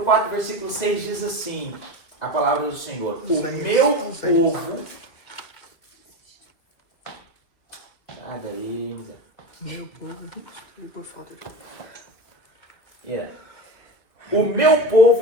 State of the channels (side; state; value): right; late; 2.5 ms